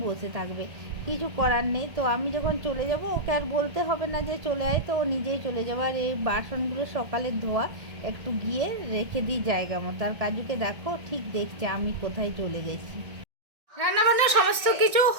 বসে থাকবে, কিছু করার নেই। তো আমি যখন চলে যাব ওকে আর বলতে হবে না যে চলে আয়, তো ও নিজেই চলে যাবে। আর এই বাসনগুলো সকালে ধোয়া, একটু গিয়ে রেখে দিই জায়গা মতো। আর কাজুকে দেখো ঠিক দেখছে আমি কোথায় চলে গেছি। রান্নাবান্না সমস্ত কিছু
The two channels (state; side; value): late; left; 1.6 ms